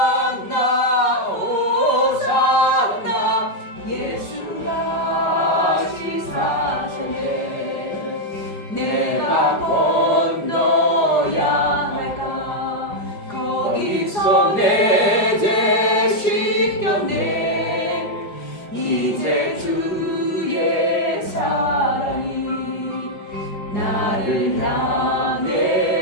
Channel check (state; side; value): late; right; 4.9 ms